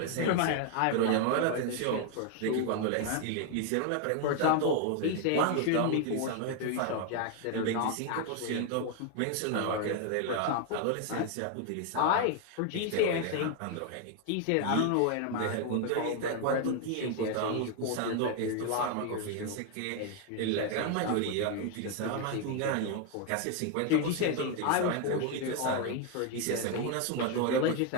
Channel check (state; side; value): different; both; correlation 0.01